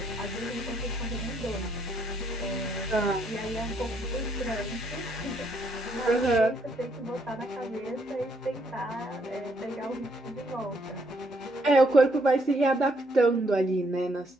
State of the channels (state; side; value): normal; both; correlation 0.71